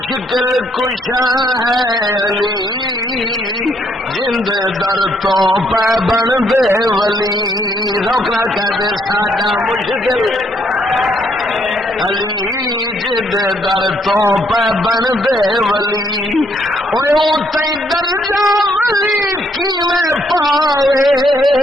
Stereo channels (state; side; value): normal; both; correlation 0.71